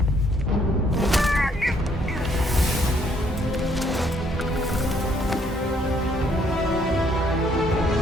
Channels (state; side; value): normal; both; correlation 0.67